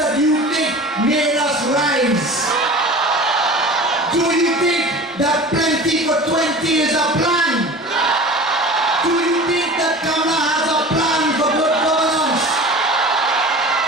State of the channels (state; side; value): normal; both; correlation 0.38